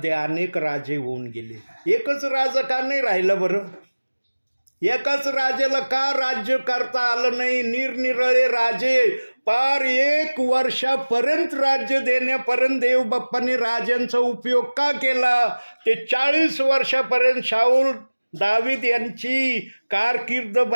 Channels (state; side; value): inverted; both; correlation -1.00